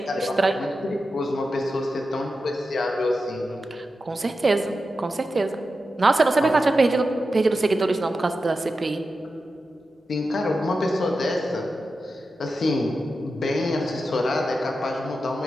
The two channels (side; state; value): both; normal; correlation 0.91